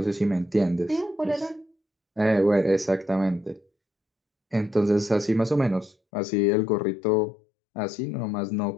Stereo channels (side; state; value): right; drops out; at 6.0 s